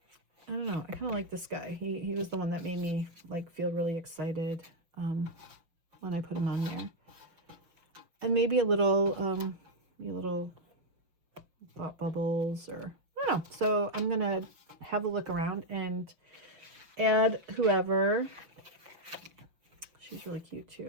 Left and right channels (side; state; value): left; late; 5.9 ms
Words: I don't know. I kind of like this guy. He was the one that made me like feel really excited when I put him on there. And maybe a little thought bubbles, or I don't know. So I'm gonna have a look around and add whoever. She's really cute